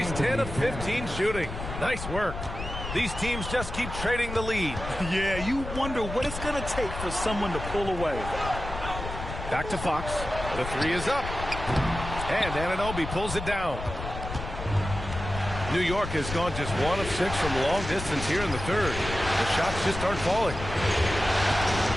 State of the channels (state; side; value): noise; left; rumble, 8 dB below the sound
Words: 10 of 15 shooting. Nice work. These teams just keep trading the lead. Yeah, you wonder what it's going to take for someone to pull away. Back to Fox. The 3 is up. And Anunoby pulls it down. New York has gone just 1 of 6 from long distance here in the third. The shots just aren't falling.